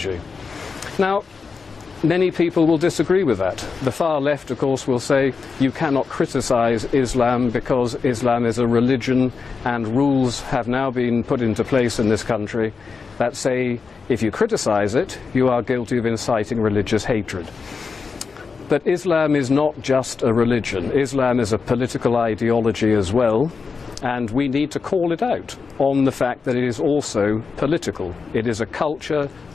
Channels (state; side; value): quieter; right; 5.0 dB